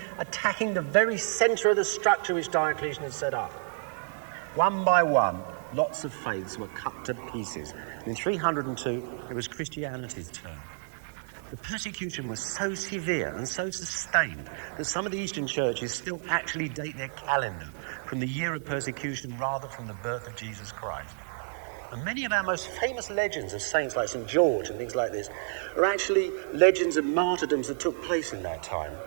attacking the very center of the structure which Diocletian had set up. One by one, lots of faiths were cut to pieces. In 302, it was Christianity's turn. The persecution was so severe and so sustained that some of the Eastern churches still actually date their calendar from the year of persecution rather from the birth of Jesus Christ. And many of our most famous legends of saints like St. George and things like this are actually legends of martyrdoms that took place in that time.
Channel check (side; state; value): left; silent; 58 dB below the other